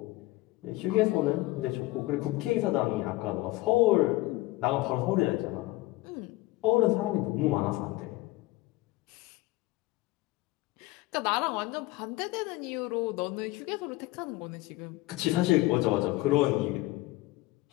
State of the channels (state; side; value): quieter; right; 19.6 dB